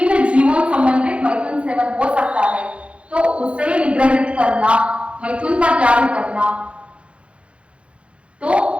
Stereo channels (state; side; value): late; left; 0.060 ms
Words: जीवों संबंधित मैथुन सेवन हो सकता है, तो उसे निग्रहित करना, मैथुन का त्याग करना, तो